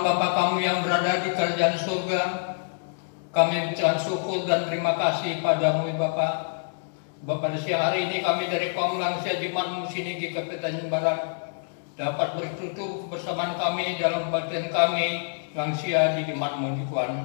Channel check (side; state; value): right; silent; digital silence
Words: Bapa kami yang berada di kerajaan surga, kami mengucapkan syukur dan terima kasih padamu Bapa. Pada siang hari ini kami dari kaum lansia Jemaat Musinigi Kabupaten Barat dapat bertutur kebersamaan kami dalam kebaktian kami lansia di Jemaat Muji Tuhan.